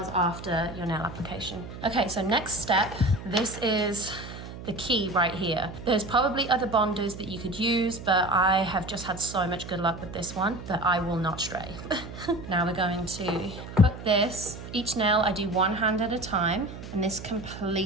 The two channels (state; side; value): noise; right; hum, 12 dB below the sound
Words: after your nail application. Okay, so next step, this is the key right here. There's probably other bonders that you could use, but I have just had so much good luck with this one that I will not stray. Now we're going to put this, each nail I do one hand at a time, and this